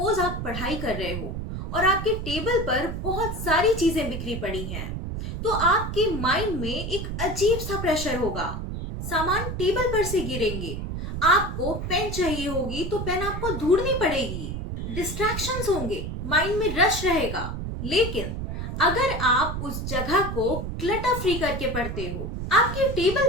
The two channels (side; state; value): right; noise; rumble, 5 dB below the sound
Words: आप पढ़ाई कर रहे हो और आपके टेबल पर बहुत सारी चीजें बिखरी पड़ी हैं, तो आपके माइंड में एक अजीब सा प्रेशर होगा। सामान टेबल पर से गिरेंगे, आपको पेन चाहिए होगी तो पेन आपको ढूंढनी पड़ेगी, डिस्ट्रैक्शंस होंगे, माइंड में रश रहेगा। लेकिन अगर आप उस जगह को क्लटर फ्री करके पढ़ते हो, आपके